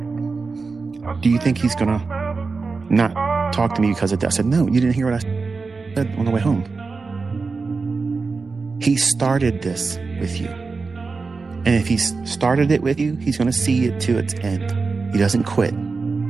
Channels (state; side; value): quieter; left; 4.3 dB